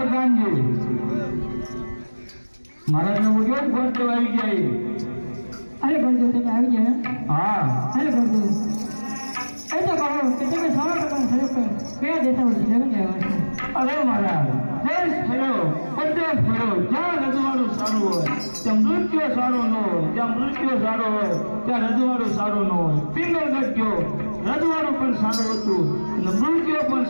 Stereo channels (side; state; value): both; inverted; correlation -1.00